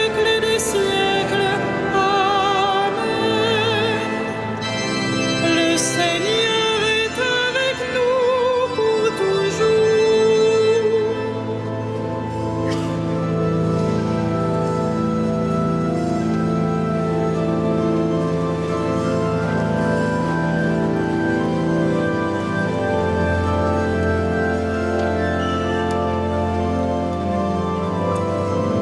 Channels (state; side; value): identical; both; correlation 1.00